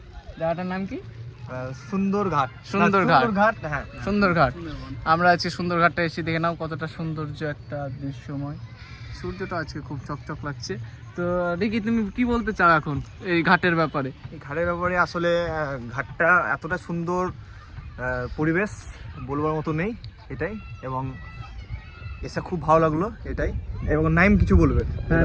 জায়গাটার নাম কি? সুন্দরঘাট। হ্যাঁ, সুন্দরঘাট। আমরা আজকে সুন্দরঘাটটা এসে দেখে নাও কতটা সৌন্দর্য একটা দৃশ্যময়। সূর্যটা আজকে খুব চকচক লাগছে। তো দেখি তুমি কি বলতে চাও এখন এই ঘাটের ব্যাপারে? এই ঘাটের ব্যাপারে আসলে ঘাটটা এতটা সুন্দর পরিবেশ বলবার মতো নেই, এটাই। এবং এসে খুব ভালো লাগলো, এটাই। এবং নাইম কিছু বলবে। হ্যাঁ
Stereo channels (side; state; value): both; identical; correlation 1.00